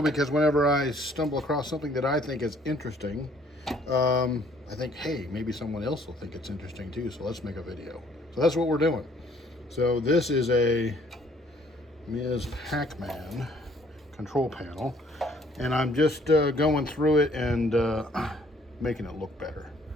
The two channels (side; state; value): both; normal; correlation 0.61